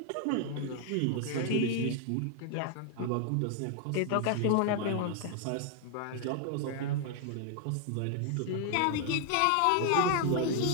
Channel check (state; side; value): different; both; correlation 0.00